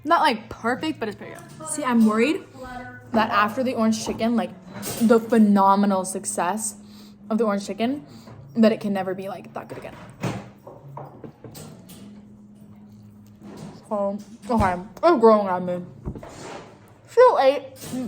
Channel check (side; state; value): both; identical; correlation 1.00